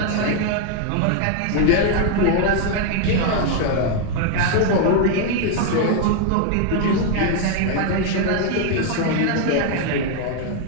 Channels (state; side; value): different; both; correlation 0.00